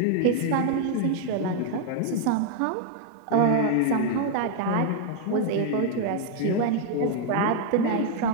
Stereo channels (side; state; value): both; different; correlation 0.00